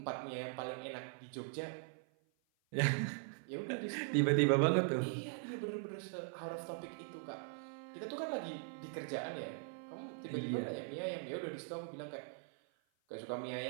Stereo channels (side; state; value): left; silent; 51 dB below the other